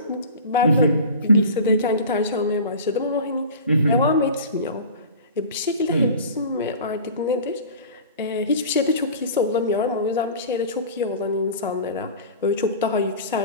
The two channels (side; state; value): both; inverted; correlation -0.37